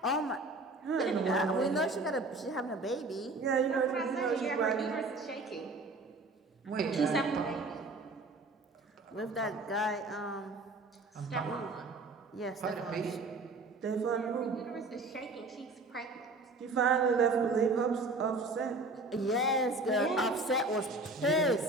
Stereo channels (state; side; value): quieter; left; 3.1 dB